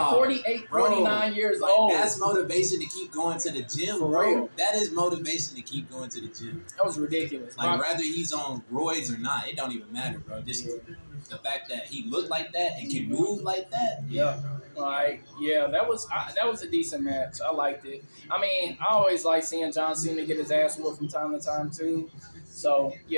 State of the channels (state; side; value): inverted; both; correlation -1.00